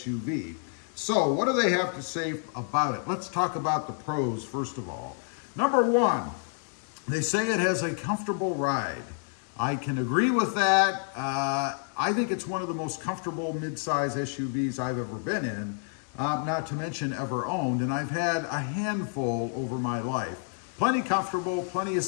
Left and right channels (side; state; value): right; silent; 59 dB below the other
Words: So what do they have to say about it? Let's talk about the pros first of all. Number one, they say it has a comfortable ride. I can agree with that. I think it's one of the most comfortable mid-size SUVs I've ever been in, not to mention ever owned, and I've had a handful over my life. Plenty comfortable, plenty of